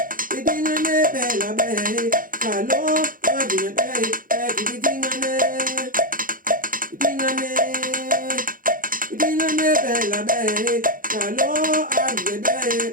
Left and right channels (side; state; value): left; late; 0.40 ms